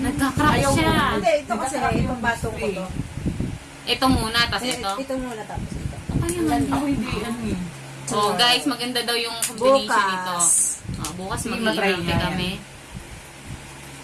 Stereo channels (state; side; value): identical; both; correlation 1.00